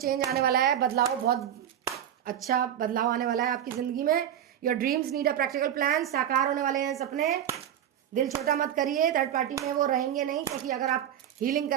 आने वाला है, बदलाव, बहुत अच्छा बदलाव आने वाला है आपकी जिंदगी में। Your dreams need a practical plan, साकार होने वाले हैं सपने। दिल छोटा मत करिए, थर्ड पार्टी में वो रहेंगे नहीं, क्योंकि अगर आप हीलिंग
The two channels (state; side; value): quieter; left; 10.3 dB